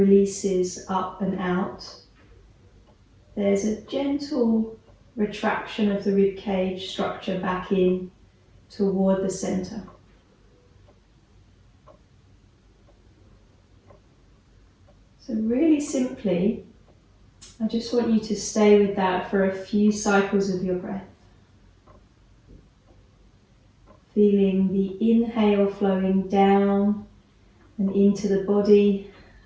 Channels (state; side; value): identical; both; correlation 1.00